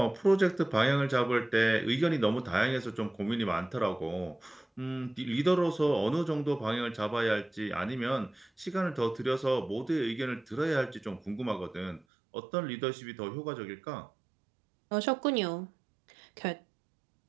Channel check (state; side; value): drops out; left; at 12.1 s